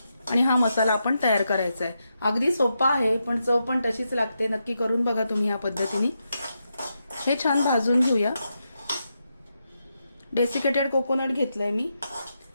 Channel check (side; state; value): both; inverted; correlation -0.85